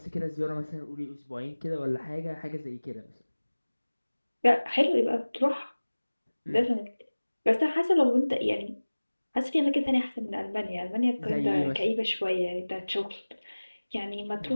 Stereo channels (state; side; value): inverted; both; correlation -1.00